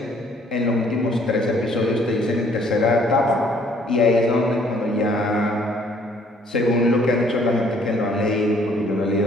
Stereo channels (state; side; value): normal; both; correlation 0.61